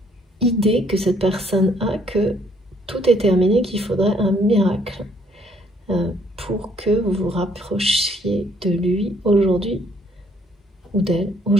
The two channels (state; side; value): normal; both; correlation 0.65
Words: idée que cette personne a que tout est terminé, qu'il faudrait un miracle pour que vous vous rapprochiez de lui aujourd'hui ou d'elle